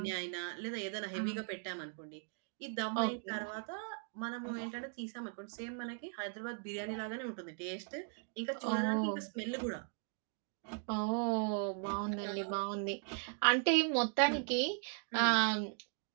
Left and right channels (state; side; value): silent; left; 52 dB below the other